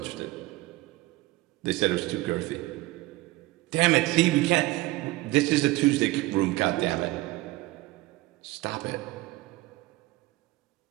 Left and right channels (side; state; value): left; quieter; 19.6 dB